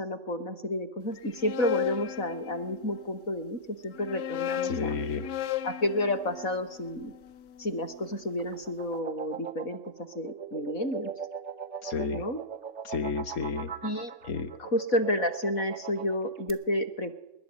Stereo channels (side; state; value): right; late; 3.3 ms